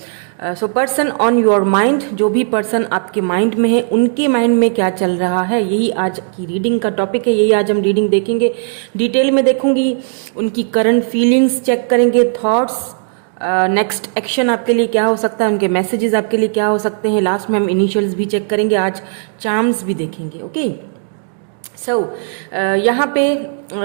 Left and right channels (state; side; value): silent; left; 63 dB below the other